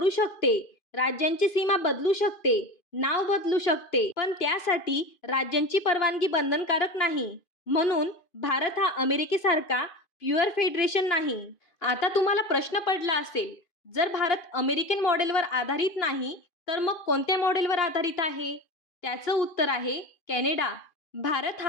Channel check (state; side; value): late; right; 2.5 ms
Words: शकते. राज्यांची सीमा बदलू शकते, नाव बदलू शकते, पण त्यासाठी राज्यांची परवानगी बंधनकारक नाही. म्हणून भारत हा अमेरिकेसारखा प्युअर फेडरेशन नाही. आता तुम्हाला प्रश्न पडला असेल, जर भारत अमेरिकन मॉडेलवर आधारित नाही, तर मग कोणत्या मॉडेलवर आधारित आहे? त्याचं उत्तर आहे कॅनडा. भारत